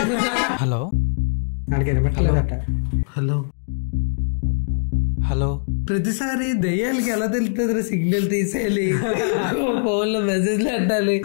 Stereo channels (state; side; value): silent; right; digital silence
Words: Hello hello hello. ప్రతిసారి దయ్యాలకి ఎలా తెలుస్తుంది సిగ్నల్ తీసేయాలి. ఫోన్ లో మెసేజ్ పెట్టాలి.